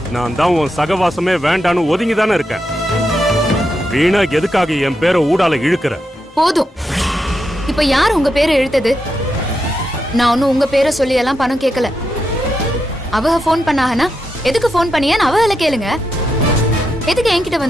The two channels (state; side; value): normal; both; correlation 0.85